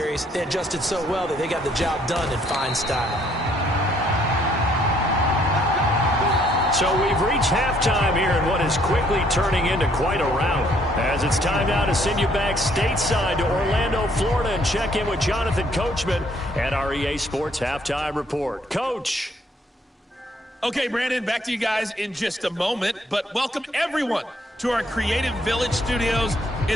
they adjusted so well that they got the job done in fine style. So we've reached halftime here in what is quickly turning into quite a rout. As it's time now to send you back stateside to Orlando, Florida, and check in with Jonathan Coachman at our EA Sports Halftime Report. Coach. Okay, Brandon, back to you guys in just a moment. But welcome everyone to our Creative Village studios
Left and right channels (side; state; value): both; normal; correlation 0.66